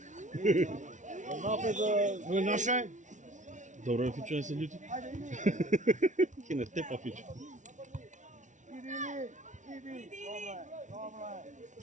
Ovo je naše? Dobro je Fičo, ne se ljuti. Kine tepa Fičo.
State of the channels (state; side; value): late; left; 0.36 ms